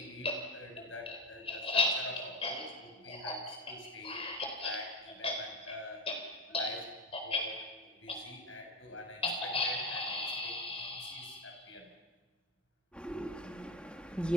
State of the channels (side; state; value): both; normal; correlation 0.20